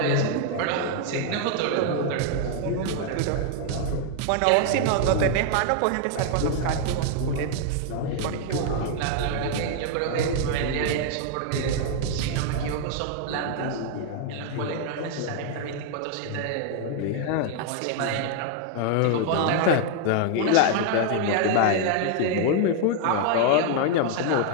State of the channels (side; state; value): both; different; correlation 0.00